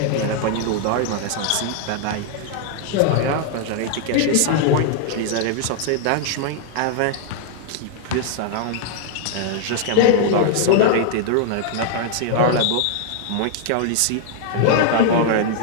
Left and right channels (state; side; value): different; both; correlation 0.00